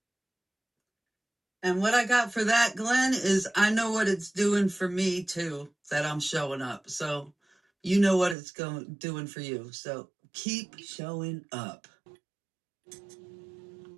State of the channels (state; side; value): drops out; left; at 8.3 s